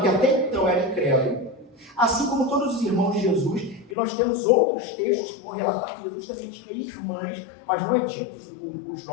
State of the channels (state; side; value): drops out; right; at 4.0 s